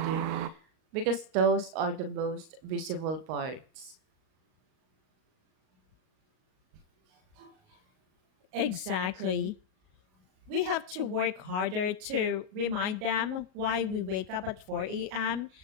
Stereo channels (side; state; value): left; late; 38 ms